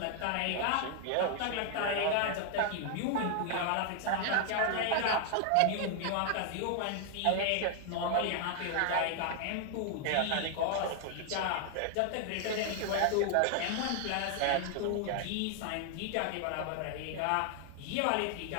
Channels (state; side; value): different; both; correlation 0.00